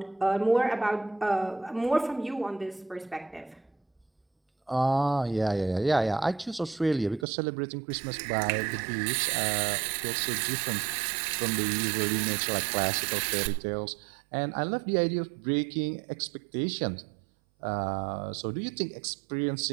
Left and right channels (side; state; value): left; drops out; at 7.2 s